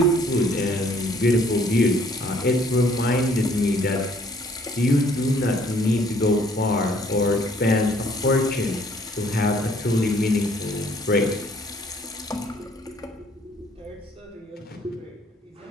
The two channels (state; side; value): normal; both; correlation 0.61